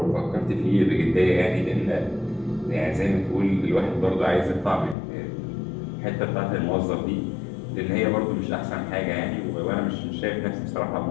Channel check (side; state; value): right; drops out; at 5.0 s